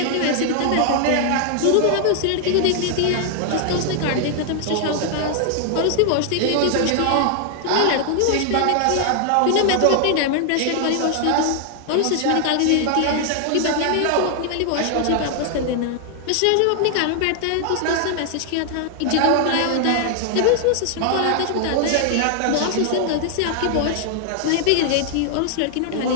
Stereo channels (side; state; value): both; different; correlation 0.00